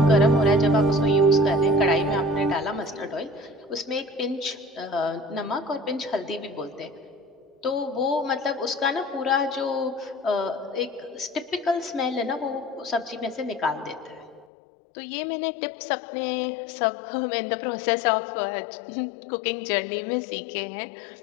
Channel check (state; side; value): drops out; right; at 14.5 s